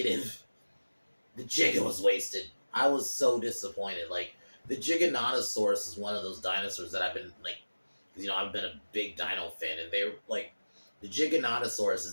the Giga was wasted. I was so disappointed. Like, the Giganotosaurus is one of those dinosaurs that I've been, like, you know, I've been a big dino fan, and they're, like, the Giganotosaurus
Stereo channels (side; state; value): both; inverted; correlation -1.00